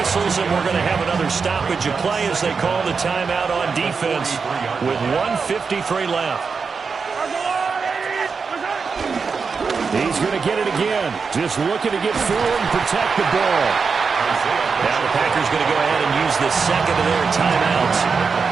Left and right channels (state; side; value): quieter; left; 5.2 dB